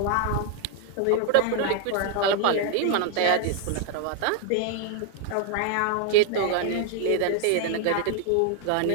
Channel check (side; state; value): both; different; correlation 0.00